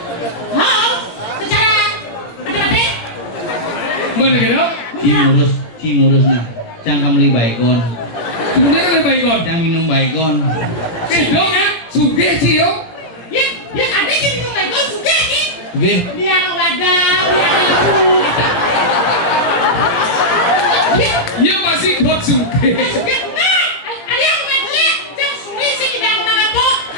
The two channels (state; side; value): late; right; 18 ms